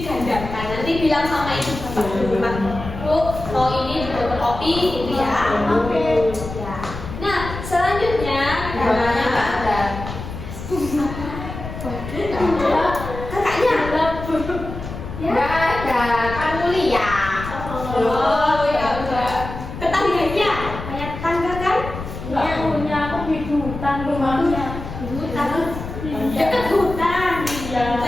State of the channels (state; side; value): noise; left; rumble, 9 dB below the sound